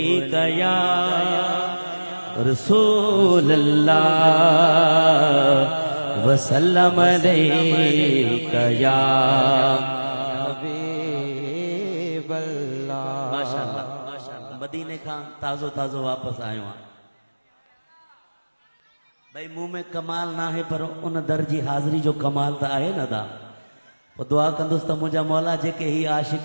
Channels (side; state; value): both; inverted; correlation -1.00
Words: یا رسول اللہ وسلم علیہ یا حبیب اللہ ماشاءاللہ مدینے کھاں تازو تازو واپس آئے ہوں بھئی منہ میں کمال نہ ہے پر ان درجی حاضری جو کمال تا آئے نہ دا وہ دعا کندوستا مجھا مولا جے کہ ہی